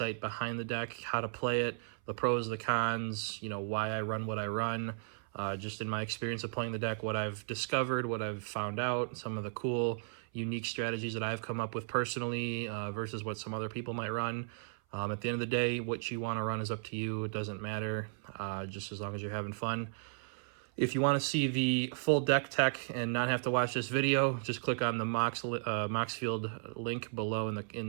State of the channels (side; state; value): left; silent; 54 dB below the other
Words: behind the deck, how to play it, the pros, the cons, why I run what I run, just in my experience of playing the deck, what I've discovered, what I've found out, some of the cool unique strategies that I've come up with personally versus what some other people might run. At the end of the day, what you want to run is up to you. It doesn't matter, just as long as you're having fun. If you want to see the full deck tech and not have to watch this video, just click on the Moxfield link below